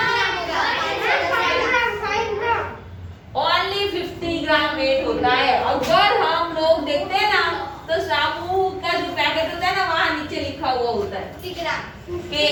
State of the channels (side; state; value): both; identical; correlation 1.00